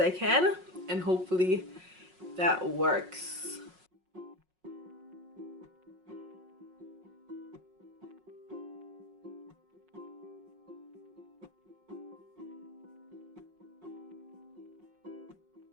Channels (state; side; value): late; left; 5.5 ms